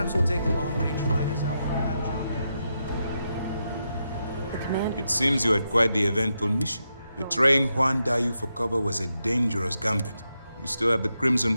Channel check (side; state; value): both; inverted; correlation -0.85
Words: we'll take the long-range fighters out for that job. The command. It seems you had quite the eventful mission. Betraying Juan Dayu for cover was a dangerous gambit. You still have the Crimson